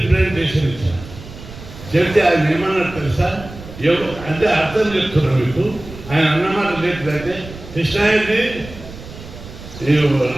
ఇచ్చారు. చెప్తే ఆయన ఏమన్నారు తెలుసా? అంటే అర్థం చెప్తున్నారు మీకు. ఆయన అన్నమాట లేకపోతే కృష్ణారెడ్డి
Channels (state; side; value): noise; right; rumble, 15 dB below the sound